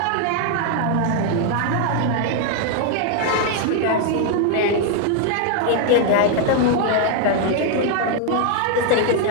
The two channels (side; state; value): both; different; correlation 0.00